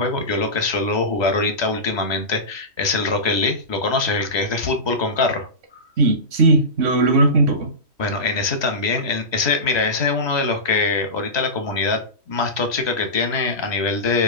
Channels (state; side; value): late; left; 3.1 ms